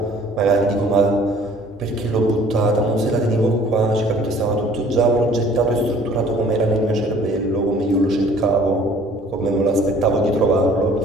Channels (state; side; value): normal; both; correlation 0.54